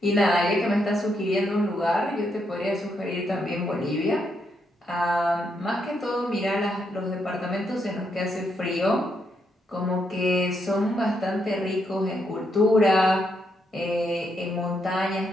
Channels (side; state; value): both; normal; correlation 0.78